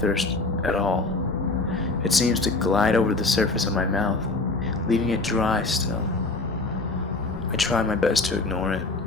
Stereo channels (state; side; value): quieter; right; 3.3 dB